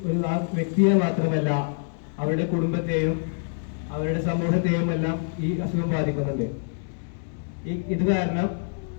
ആ വ്യക്തിയെ മാത്രമല്ല, അവരുടെ കുടുംബത്തെയും അവരുടെ സമൂഹത്തെയും എല്ലാം ഈ അസുഖം ബാധിക്കുന്നുണ്ട്. ഇത് കാരണം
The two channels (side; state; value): right; silent; digital silence